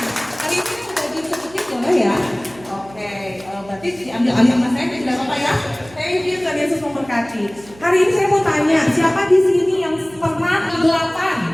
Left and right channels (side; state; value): right; noise; hum, 22 dB below the sound